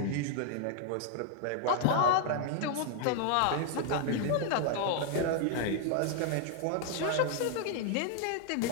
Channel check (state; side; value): different; both; correlation 0.00